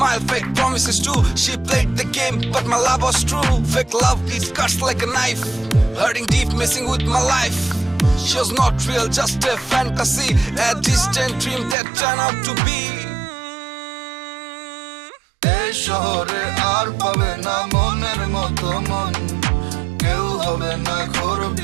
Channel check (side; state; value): left; drops out; at 11.8 s